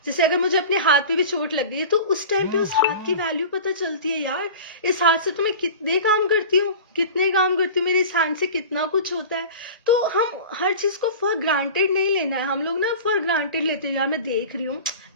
जैसे अगर मुझे अपने हाथ पे भी चोट लग गई है, तो उस टाइम पे उस हाथ की वैल्यू पता चलती है, यार इस हाथ से तो मैं कितने काम करती हूँ, मेरे इस हैंड से कितना कुछ होता है। तो हम हर चीज को फॉर ग्रांटेड नहीं लेना है। हम लोग ना फॉर ग्रांटेड लेते हैं, यार मैं देख रही हूँ,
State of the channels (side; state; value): both; inverted; correlation -0.36